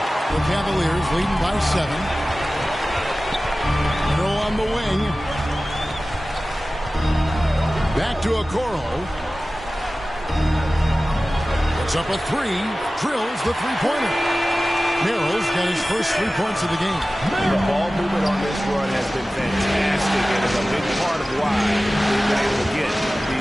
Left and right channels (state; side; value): normal; both; correlation 0.96